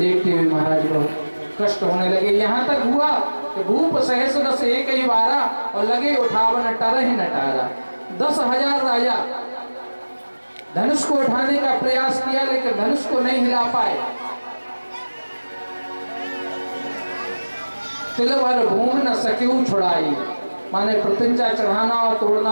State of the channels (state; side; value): inverted; both; correlation -1.00